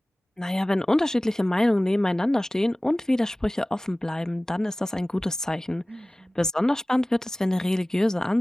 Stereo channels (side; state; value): both; normal; correlation 0.98